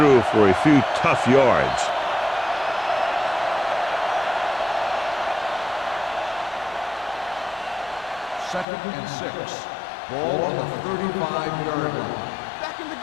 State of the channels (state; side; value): drops out; right; at 8.7 s